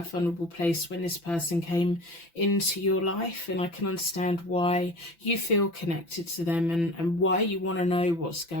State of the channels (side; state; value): right; late; 5.9 ms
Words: a vulnerable place when this person came into your life, and I can understand why you feel connected to them and why you want to know what's